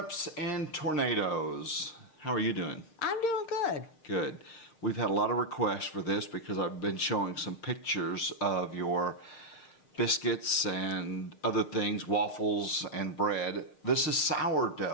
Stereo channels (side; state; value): right; late; 6.6 ms